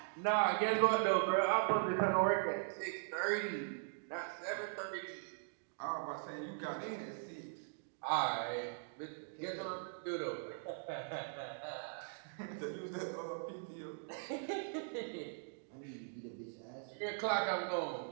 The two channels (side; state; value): left; silent; digital silence